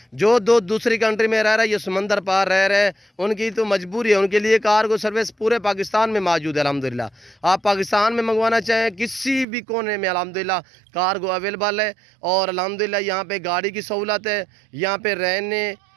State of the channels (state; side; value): drops out; left; at 9.5 s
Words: जो दोस्त दूसरी कंट्री में रह रहे हैं, ये समंदर पार रह रहे हैं, उनकी तो मजबूरी है, उनके लिए कार्गो सर्विस पूरे पाकिस्तान में मौजूद है अल्हम्दुलिल्लाह। आप पाकिस्तान में मंगवाना चाहें किसी भी कोने में अल्हम्दुलिल्लाह कार्गो अवेलेबल है। और अल्हम्दुलिल्लाह यहाँ पे गाड़ी की सहूलत है, यहाँ पे रहने